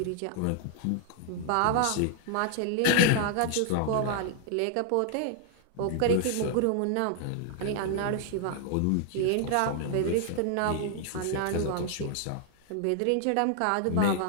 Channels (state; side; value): different; both; correlation 0.00